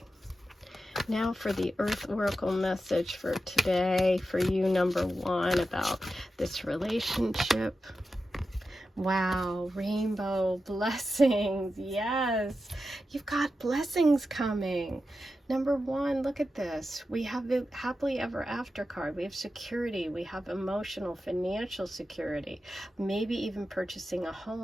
Now for the Earth Oracle message for today, for you, number one, about this relationship. Wow, rainbow blessings. Yes, you've got blessings coming. Number one, look at this. We have the happily ever after card. We have security. We have emotional, financial security. Maybe even purchasing a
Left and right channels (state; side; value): normal; both; correlation 0.91